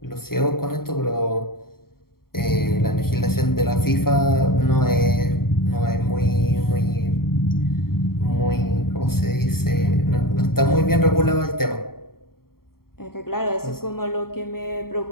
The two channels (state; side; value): late; right; 0.93 ms